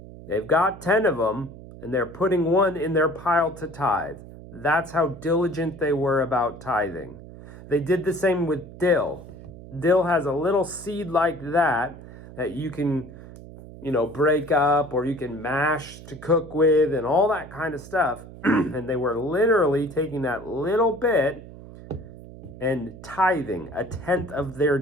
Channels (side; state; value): right; noise; hum, 16 dB below the sound